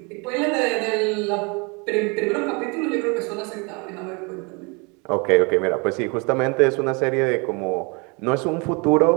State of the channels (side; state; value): left; quieter; 30.8 dB